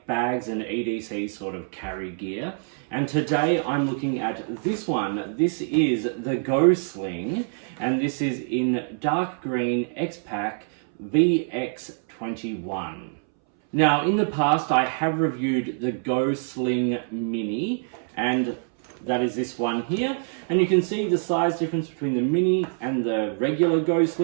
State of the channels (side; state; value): left; silent; 62 dB below the other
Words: bags and EDC sort of carry gear. And today I'm looking at this one. This is the Go Sling, and this is in dark green X-Pac VX21. Now, in the past, I have reviewed the Go Sling Mini, and that is this one here. And you can see the size difference between the Mini and the regular Go